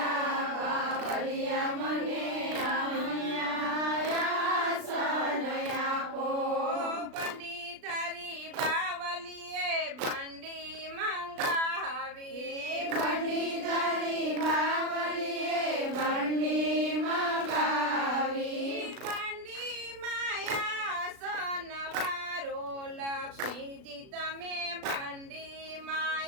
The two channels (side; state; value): left; late; 36 ms